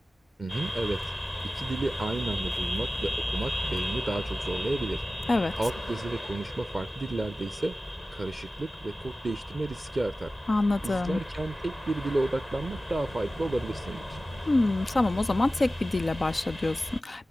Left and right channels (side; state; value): both; normal; correlation 0.95